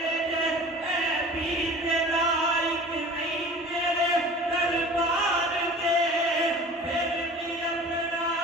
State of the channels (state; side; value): normal; both; correlation 0.42